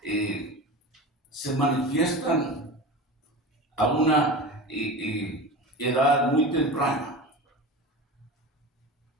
se manifiestan a una edad muy temprana.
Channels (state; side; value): normal; both; correlation 0.30